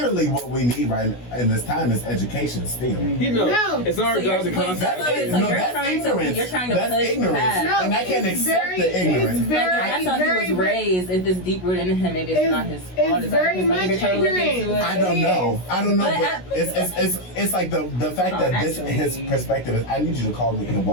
what we need right in this time is education still. It's our job to contact. You're trying to push ignorance. And I can't accept the ignorance. I thought he was raised. If it's deep rooted in him, maybe it's not his fault. It's very much ignorant. I don't know. But it's like the fact that his perspective is, I need you to call me and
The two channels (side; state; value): right; late; 16 ms